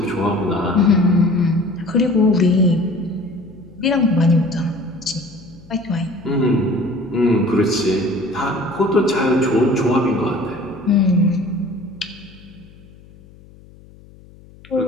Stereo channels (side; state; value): left; noise; hum, 24 dB below the sound